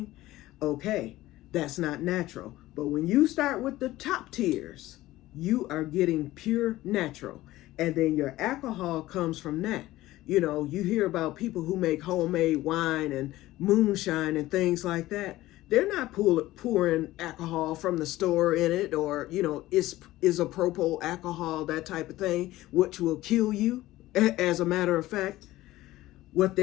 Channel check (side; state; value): right; quieter; 16.6 dB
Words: Okay, that's not natural. But when you start with the top tiers, you are getting pure natural. And then your alcohol comes from that. You hear about people who make homemade wine and moonshine and things like that. They're not pouring alcohol from the store in it, or, isopropyl alcohol, that type of thing, which will kill you. As a matter of fact, what